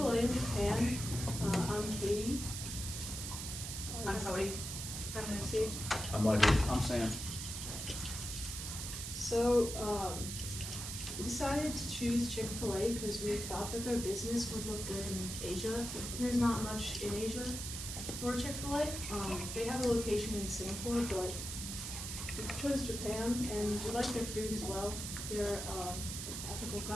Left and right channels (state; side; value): noise; right; hiss, 6 dB below the sound